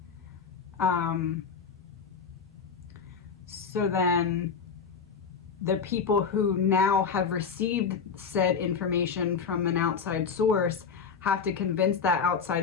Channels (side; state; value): right; quieter; 6.0 dB